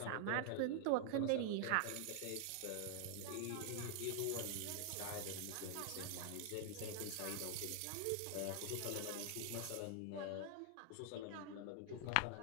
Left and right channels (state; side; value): different; both; correlation 0.00